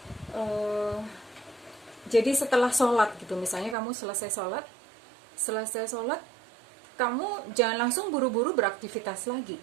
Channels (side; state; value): left; drops out; at 3.8 s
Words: jadi setelah sholat gitu, misalnya kamu selesai sholat, kamu jangan langsung buru-buru beraktivitas lagi,